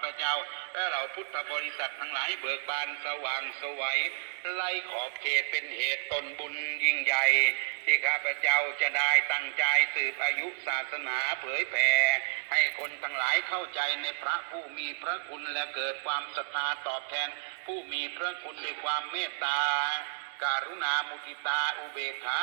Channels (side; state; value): left; silent; digital silence